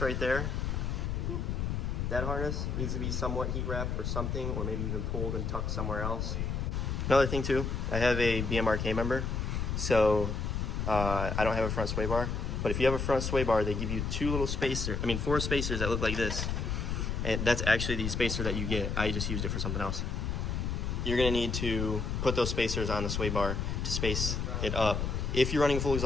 right there, that harness needs to be somewhat heat wrapped or something, or maybe even pulled and tucked somewhere else. Another thing too, I have a BMRK member, so I don't have a front sway bar. But if you have a front sway bar, they give you four spacers that look like this. And that's actually the spacer that you get. I just used it for something else. You're gonna need to put those spacers on the sway bar to space it up if you're running a full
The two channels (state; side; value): noise; left; rumble, 1 dB below the sound